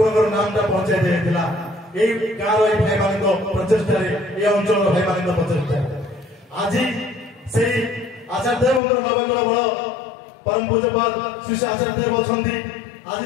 ନାମଟା ପହଞ୍ଚାଇ ଦିଆଯାଇଥିଲା। এই ଗାଁର এই ଭାଇମାନଙ୍କ ପ୍ରଚେଷ୍ଟାରେ এই ଅଞ୍ଚଳର ଭାଇମାନଙ୍କ ପ୍ରଚେଷ୍ଟାରେ ଆଜି ସେଇ ଆଚାର୍ଯ୍ୟ ଦେବଙ୍କର ନବକଳ ବଳ ପରମ ପୂଜ୍ୟପାଦ ଶ୍ରୀ ଆଚାର୍ଯ୍ୟ ଦେବ ଅଛନ୍ତି। ଆଜି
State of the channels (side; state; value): right; drops out; at 8.8 s